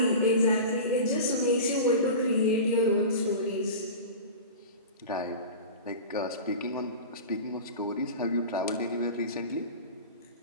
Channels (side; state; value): both; inverted; correlation -0.31